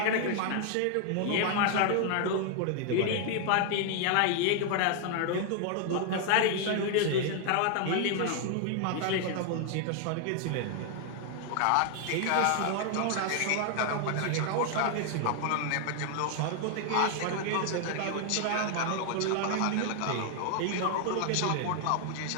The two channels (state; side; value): different; both; correlation 0.00